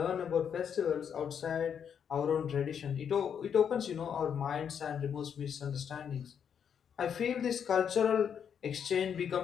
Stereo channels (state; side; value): quieter; right; 7.8 dB